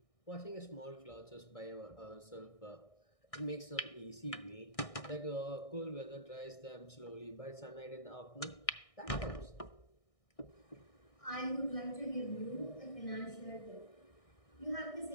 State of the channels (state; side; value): late; right; 1.6 ms